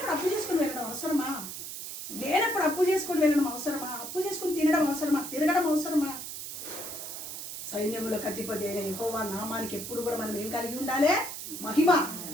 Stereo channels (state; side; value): noise; right; hiss, 8 dB below the sound